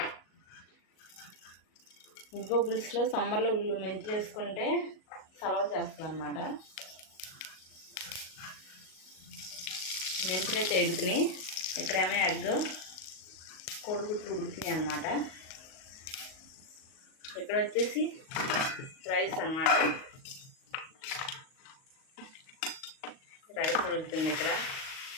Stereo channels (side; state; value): right; late; 38 ms